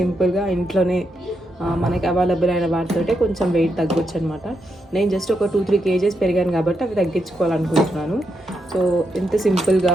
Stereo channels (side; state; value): both; normal; correlation 0.82